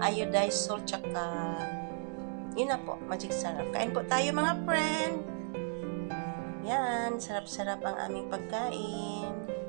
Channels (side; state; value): left; silent; 55 dB below the other